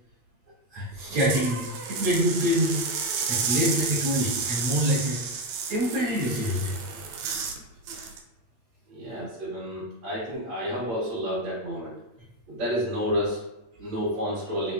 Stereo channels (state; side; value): late; left; 8.7 ms